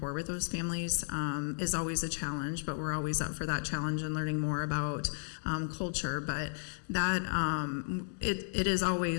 with those families is always a challenge, but we're always up for that challenge and learning more about culture. But that it is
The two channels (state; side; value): silent; right; digital silence